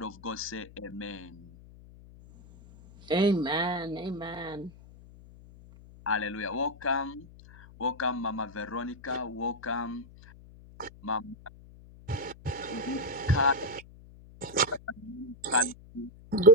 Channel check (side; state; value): left; noise; hum, 20 dB below the sound